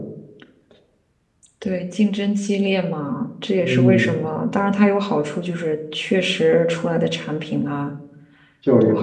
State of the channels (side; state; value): both; identical; correlation 1.00